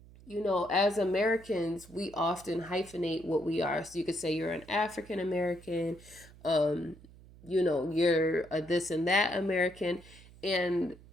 as Americans, we often hyphenate what we are. So, you could say you're an African American, you're a this and that American. And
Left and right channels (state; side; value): noise; right; hum, 22 dB below the sound